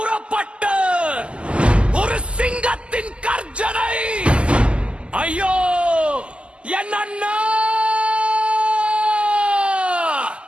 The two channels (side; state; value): left; late; 0.053 ms